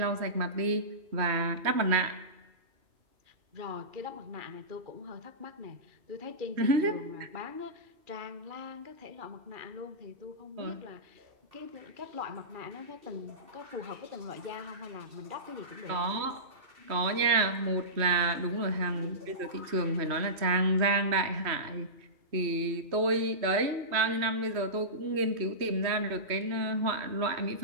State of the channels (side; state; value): left; late; 3.1 ms